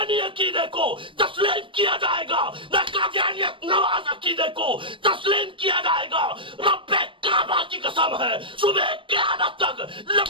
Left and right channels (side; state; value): left; late; 0.25 ms